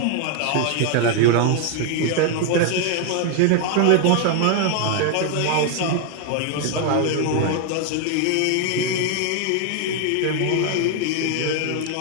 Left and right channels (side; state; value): both; different; correlation 0.00